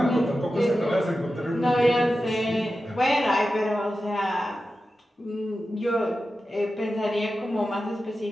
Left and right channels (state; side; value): normal; both; correlation 0.92